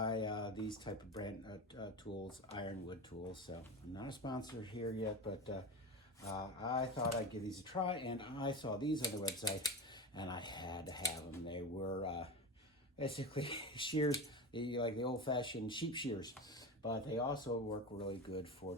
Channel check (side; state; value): both; normal; correlation 0.25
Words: these type of brand tools, ironwood tools. So I'm not a sponsor here yet, but I thought I'd give these a try, and I saw these on the website, and I had to have them. They were basically shears, like the old-fashioned sheep shears, but they also work really good for